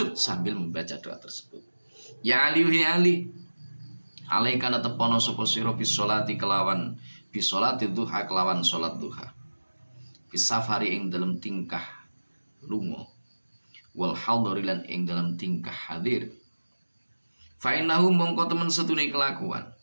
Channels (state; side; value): inverted; both; correlation -1.00